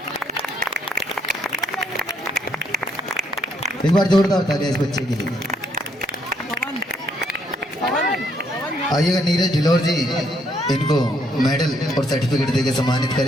एक बार जोरदार तालियां इस बच्चे के लिए। आइएगा नीरज ढिलोर जी, इनको medal और सर्टिफिकेट देके सम्मानित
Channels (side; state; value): both; normal; correlation 0.71